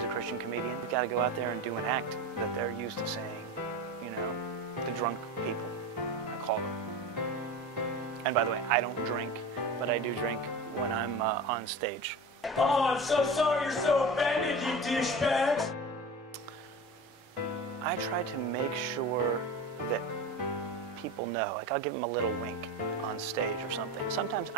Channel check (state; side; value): normal; both; correlation 0.29